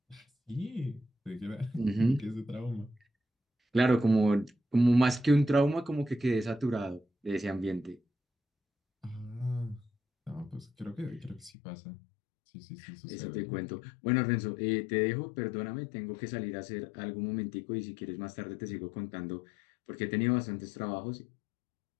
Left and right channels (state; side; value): drops out; right; at 11.5 s